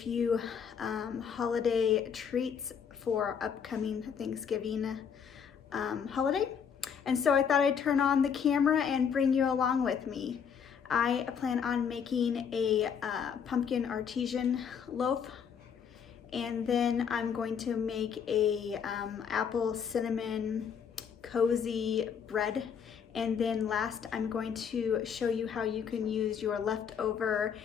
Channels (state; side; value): quieter; right; 7.2 dB